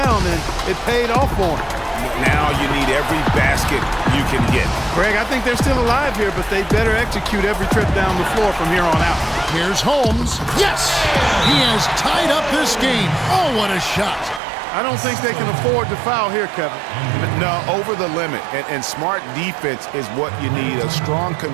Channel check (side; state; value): left; drops out; at 14.4 s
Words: and it paid off for him. Now you need every basket you can get. Greg, I think they're still alive here, but they better execute every trip down the floor from here on out. Here's Holmes. Yes! He has tied up this game. Oh, what a shot. I don't think they can afford to foul here, Kevin. No, over the limit. And smart defense is what you need. A strong